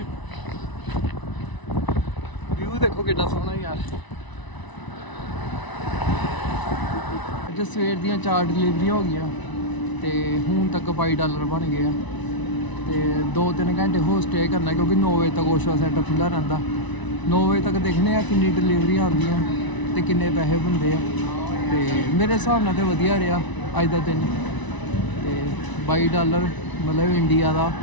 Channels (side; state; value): right; late; 1.0 ms